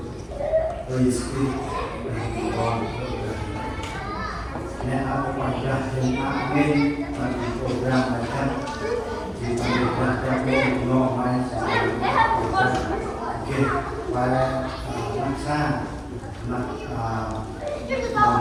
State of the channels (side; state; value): both; identical; correlation 1.00